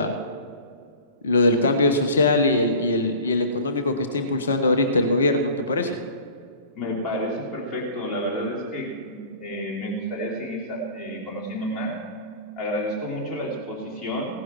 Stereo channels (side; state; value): both; inverted; correlation -0.41